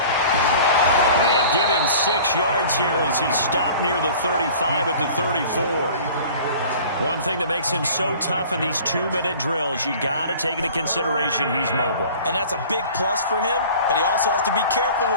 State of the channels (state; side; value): inverted; both; correlation -0.45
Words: And give him 6 yards here as he stopped near the 35 at the 34. One thing that makes him so tough in these 2-minute drills, you got to take into consideration he's mobile. And that's a big plus for him, but he also has to be careful